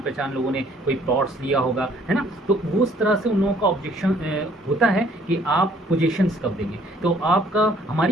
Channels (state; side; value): normal; both; correlation 0.61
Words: पहचान लोगों ने कोई प्लॉट्स लिया होगा, है ना। तो वो उस तरह से उन लोगों का ऑब्जेक्शन होता है कि आप पोजीशंस कब देंगे। तो आपका